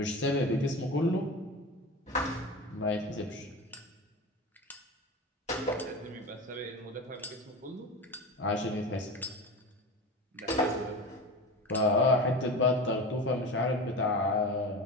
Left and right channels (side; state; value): both; normal; correlation 0.28